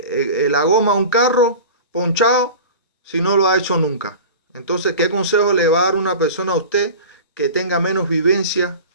la goma a un carro ponchado si no lo ha hecho nunca. Entonces, ¿qué consejo le va a dar una persona a usted que tenga menos vivencia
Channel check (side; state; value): both; inverted; correlation -0.35